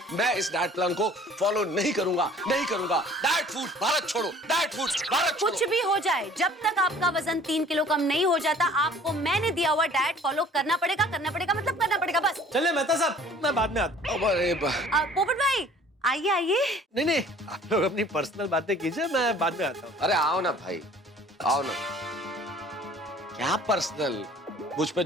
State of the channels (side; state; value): both; normal; correlation 0.52